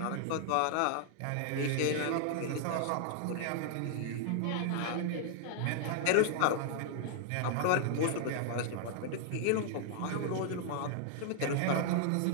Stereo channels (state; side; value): different; both; correlation 0.00